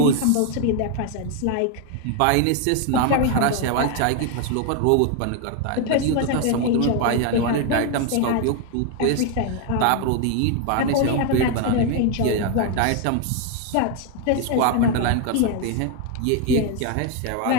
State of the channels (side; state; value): both; different; correlation 0.01